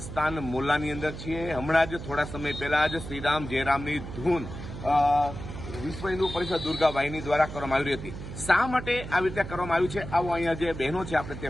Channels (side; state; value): right; noise; hum, 10 dB below the sound